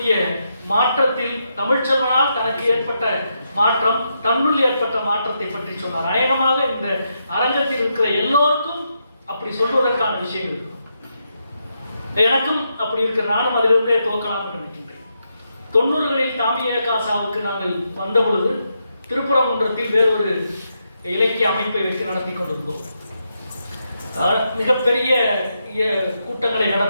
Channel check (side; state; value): both; inverted; correlation -0.82